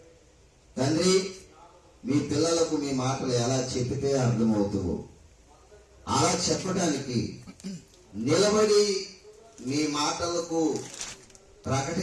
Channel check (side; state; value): both; identical; correlation 1.00